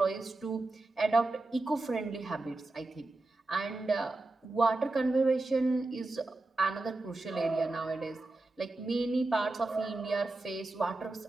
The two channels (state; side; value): quieter; left; 3.0 dB